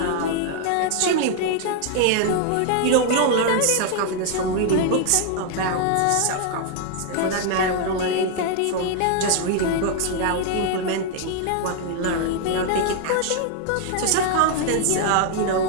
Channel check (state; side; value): different; both; correlation 0.00